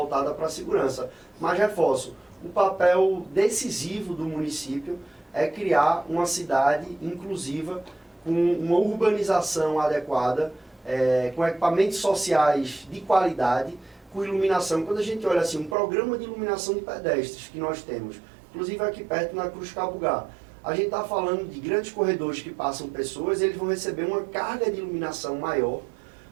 para a segurança. Mas reforço, o papel decisivo do município é criar uma cidade inclusiva, com uma urbanização adequada, com equipamentos sociais de qualidade, com iluminação. Quando a gente olha assim, um programa de iluminação de pedestres que nós temos, inclusive aqui perto na Cruz Cabugá, a gente está falando de grandes corredores que passam pessoas, eles vão receber uma carga de iluminação maior,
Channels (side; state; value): left; drops out; at 15.8 s